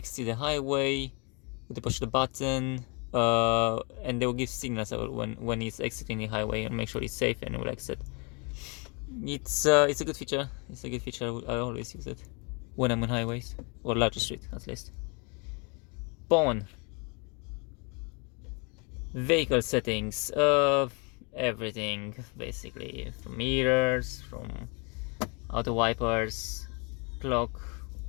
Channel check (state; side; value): quieter; right; 33.1 dB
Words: the highway with the push the button, and they will give signals when it's exiting the highway and make sure it's safe and it will exit. It's a good feature. I always use it when I'm on highways or larger street at least. Phone, vehicle settings, everything basically, from mirrors, from auto wipers, clock,